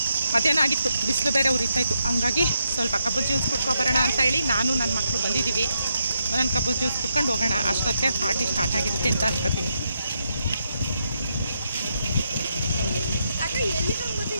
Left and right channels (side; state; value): both; inverted; correlation -0.82